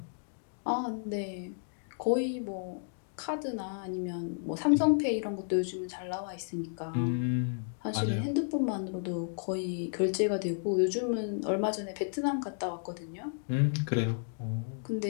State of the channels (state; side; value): silent; right; digital silence